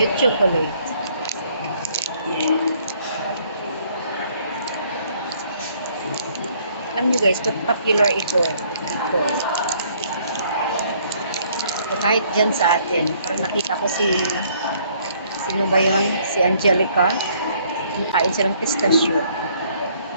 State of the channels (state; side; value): inverted; both; correlation -0.63